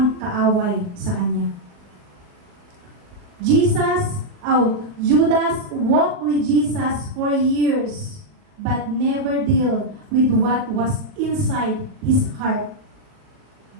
kaaway sa kanya. Judas walked with Jesus for years but never deal with what was inside his heart.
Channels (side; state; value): left; late; 40 ms